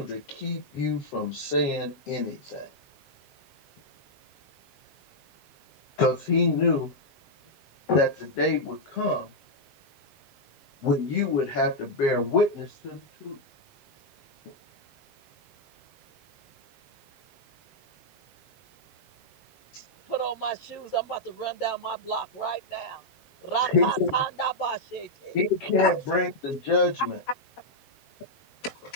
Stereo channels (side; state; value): right; late; 7.5 ms